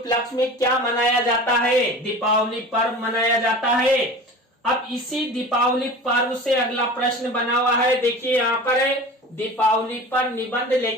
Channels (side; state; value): both; normal; correlation 0.36